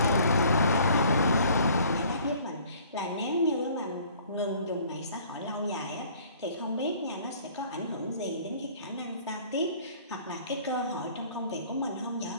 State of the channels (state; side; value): inverted; both; correlation -0.54